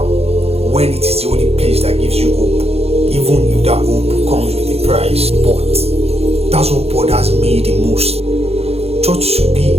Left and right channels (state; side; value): late; left; 0.29 ms